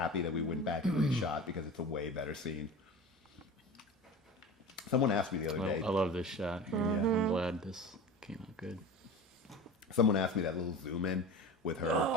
that we went back and reshot because it's a way better scene. Someone asked me the other day. I love this shot. I'm glad this came out good. Someone asked me that little zoom in with her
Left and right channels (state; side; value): normal; both; correlation 0.34